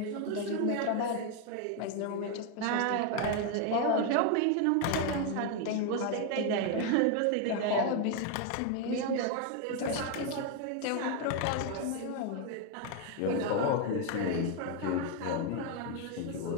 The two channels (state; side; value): different; both; correlation 0.01